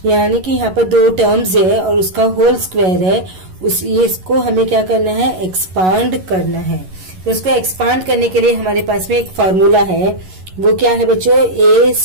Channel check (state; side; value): late; left; 11 ms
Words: यानी कि यहाँ पर दो टर्म्स है और उसका होल स्क्वायर है। इसको हमें क्या करना है, एक्सपांड करना है। तो उसको एक्सपांड करने के लिए हमारे पास में एक फार्मूला है, वो क्या है बच्चों, a